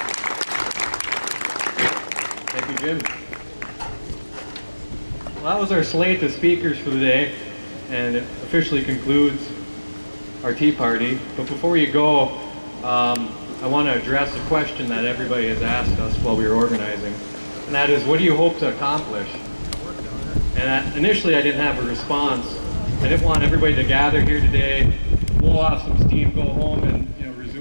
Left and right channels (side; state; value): both; inverted; correlation -1.00